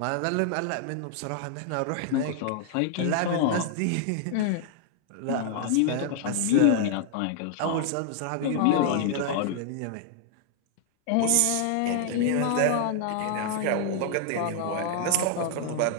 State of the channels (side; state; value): both; different; correlation 0.00